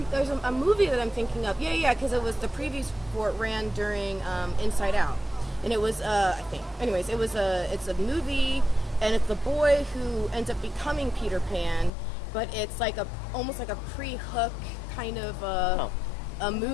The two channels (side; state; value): right; drops out; at 11.9 s